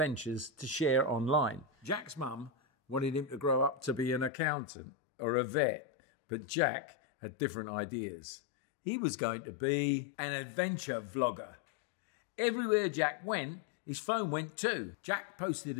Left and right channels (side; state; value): right; drops out; at 4.3 s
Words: to share online. Jack's mum wanted him to grow up to be an accountant or a vet, but Jack had different ideas. He was going to be an adventure vlogger. Everywhere Jack went, his phone went too. Jack posted